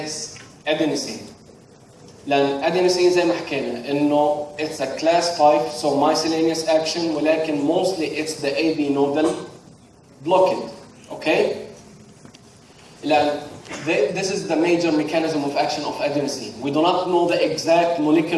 adenosine. لأن adenosine زي ما حكينا إنه it's a class 5, so miscellaneous action, ولكن mostly it's the AV nodal blockade. Okay? لأن this is the major mechanism of action of adenosine. We do not know the exact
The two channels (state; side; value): identical; both; correlation 1.00